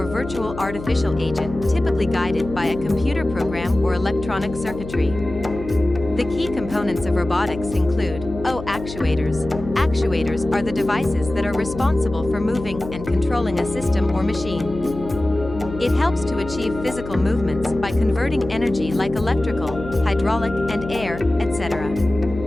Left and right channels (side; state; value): left; noise; hum, 11 dB below the sound